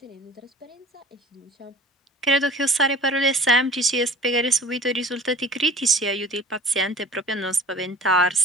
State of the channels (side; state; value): both; normal; correlation 0.45